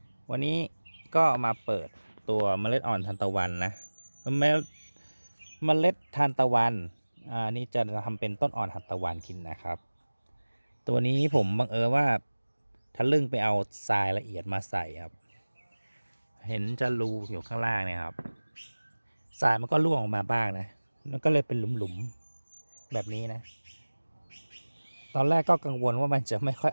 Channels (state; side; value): inverted; both; correlation -1.00